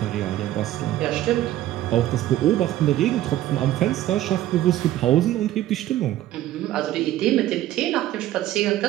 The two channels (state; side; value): quieter; left; 14.0 dB